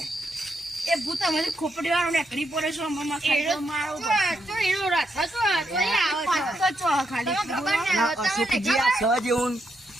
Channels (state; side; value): normal; both; correlation 0.80